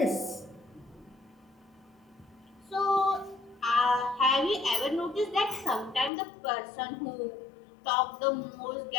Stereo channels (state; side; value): drops out; right; at 6.1 s